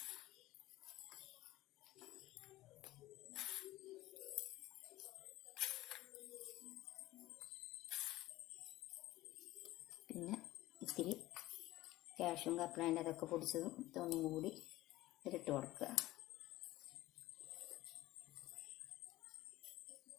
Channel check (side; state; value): right; quieter; 17.0 dB